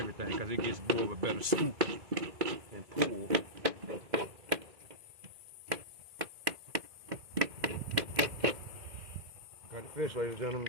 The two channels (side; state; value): left; late; 2.2 ms